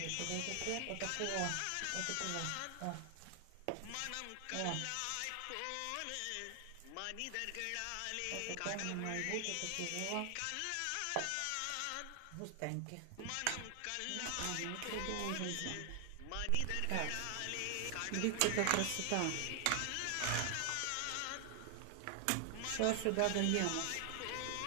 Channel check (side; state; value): both; different; correlation 0.00